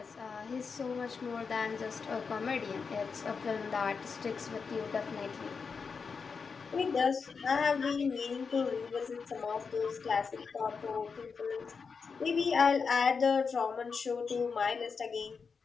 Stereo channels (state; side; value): quieter; right; 5.4 dB